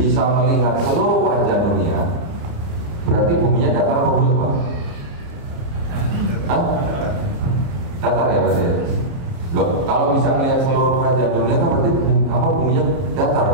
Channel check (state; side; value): late; left; 29 ms